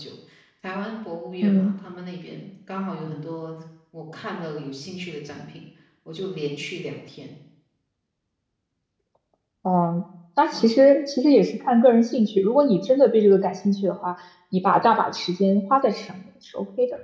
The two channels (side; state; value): both; identical; correlation 1.00